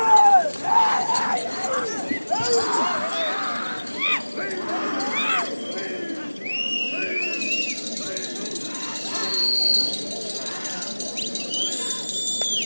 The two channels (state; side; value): inverted; both; correlation -1.00